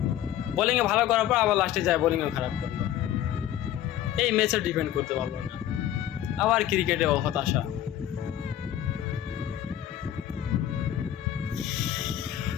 বোলিংয়ে ভালো করার পর আবার লাস্টে যায় বোলিংও খারাপ করলো। এই ম্যাচে ডিপেন্ড করতে পারলো না। আবার ক্রিকেটে হতাশা।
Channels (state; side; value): quieter; right; 11.8 dB